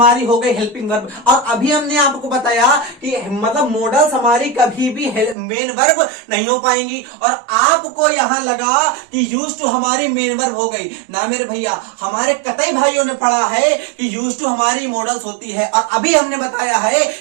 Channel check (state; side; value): drops out; left; at 5.4 s